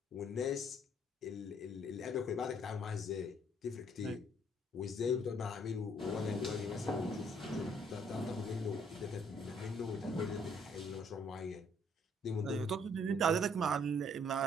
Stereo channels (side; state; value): both; normal; correlation 0.64